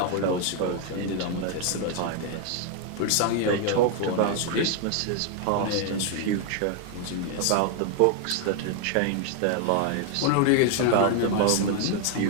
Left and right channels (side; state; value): both; different; correlation 0.00